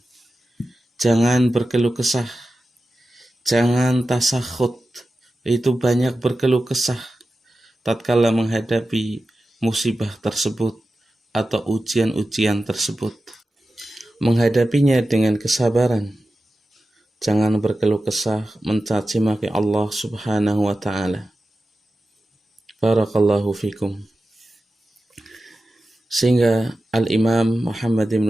Jangan berkeluh kesah. Jangan tasakhut. Itu banyak berkeluh kesah tatkala menghadapi musibah tersebut atau ujian-ujian tersebut. Menghadapinya dengan kesabaran. Jangan berkeluh kesah, mencaci maki Allah Subhanahu wa ta'ala. Barakallahu fikum. Sehingga Al-Imam Muhammad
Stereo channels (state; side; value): normal; both; correlation 0.93